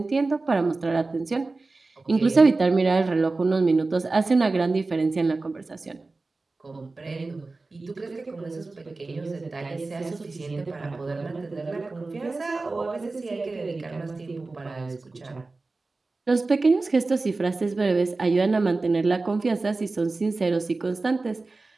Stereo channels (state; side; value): quieter; left; 3.5 dB